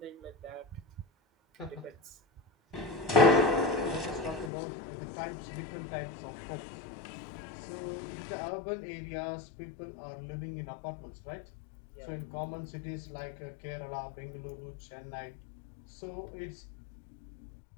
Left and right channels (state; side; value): drops out; right; at 4.5 s